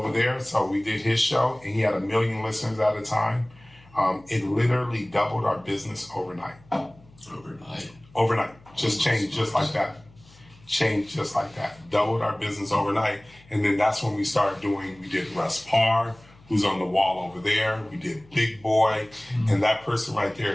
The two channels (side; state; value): left; noise; hum, 26 dB below the sound